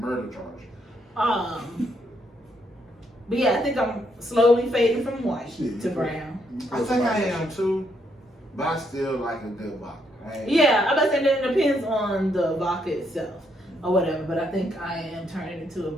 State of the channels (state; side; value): normal; both; correlation 0.75